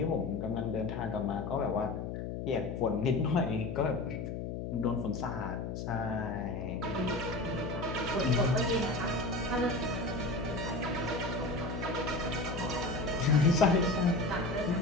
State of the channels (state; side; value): noise; left; hum, 5 dB below the sound